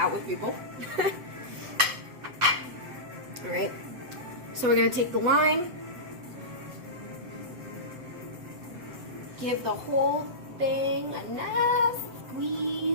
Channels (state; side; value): late; left; 8.0 ms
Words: with people. Alright, so we're going to take the lime, give the whole thing a nice